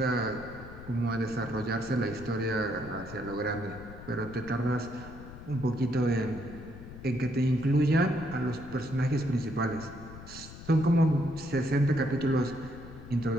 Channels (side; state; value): left; noise; rumble, 14 dB below the sound